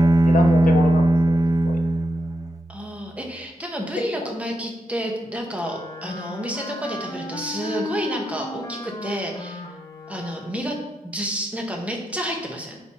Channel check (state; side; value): normal; both; correlation 0.84